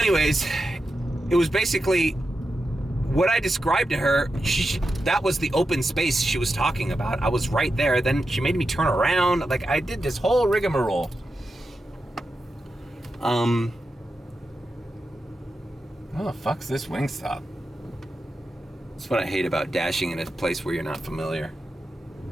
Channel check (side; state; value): both; normal; correlation 0.89